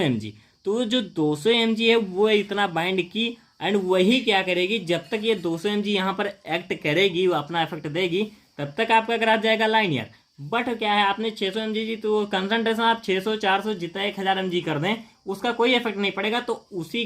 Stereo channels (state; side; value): identical; both; correlation 1.00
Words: mg, तो जो 200 mg है वो इतना बाइंड की, एंड वही क्या करेगी, जब तक ये 200 mg यहाँ पर एक्ट करेगी, वो अपना इफेक्ट देगी, तब तक आपका ग्राफ जाएगा लाइनियर। बट क्या है, आपने 600 mg जी, तो कंसंट्रेशन आप 600 400 जितना 1000 mg कर दें, उसका कोई इफेक्ट नहीं पड़ेगा। तो उसी